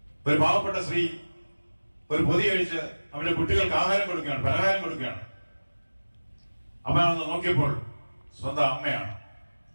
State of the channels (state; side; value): inverted; both; correlation -1.00